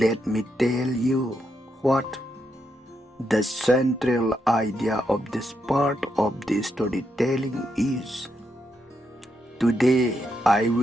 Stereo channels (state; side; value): normal; both; correlation 0.81